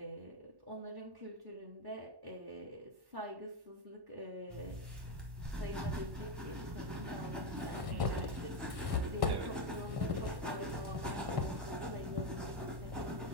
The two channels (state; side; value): late; left; 1.1 ms